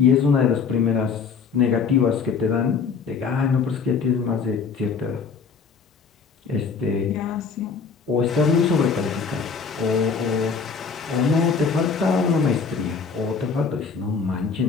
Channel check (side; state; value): right; quieter; 5.5 dB